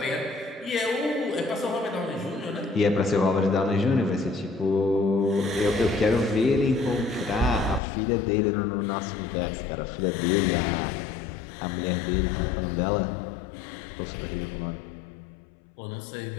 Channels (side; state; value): right; drops out; at 7.8 s